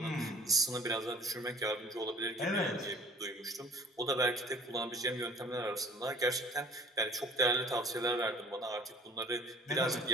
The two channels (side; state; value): both; normal; correlation 0.50